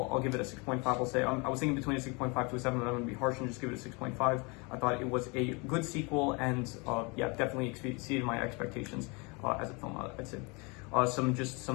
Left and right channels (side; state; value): right; quieter; 29.6 dB